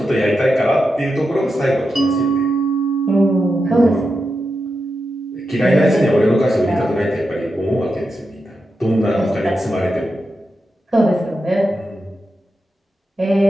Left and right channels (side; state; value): both; normal; correlation 0.88